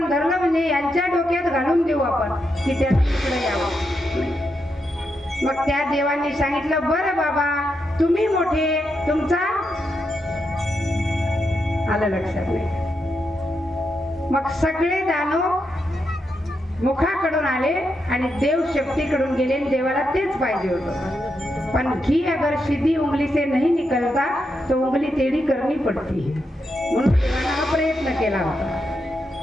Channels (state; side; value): normal; both; correlation 0.84